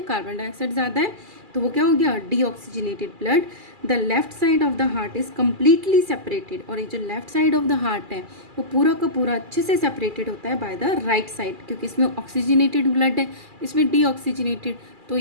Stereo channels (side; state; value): left; late; 2.4 ms